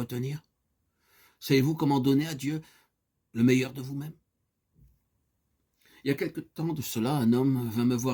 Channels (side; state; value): both; identical; correlation 1.00